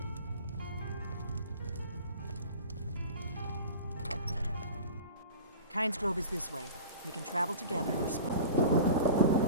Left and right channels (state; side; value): inverted; both; correlation -0.36